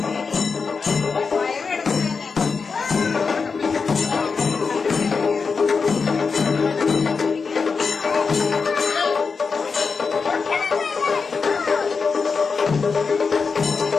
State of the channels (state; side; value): quieter; right; 5.0 dB